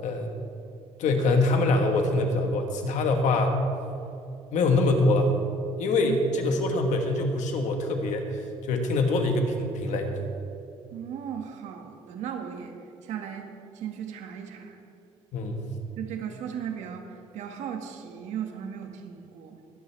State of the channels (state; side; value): normal; both; correlation 0.56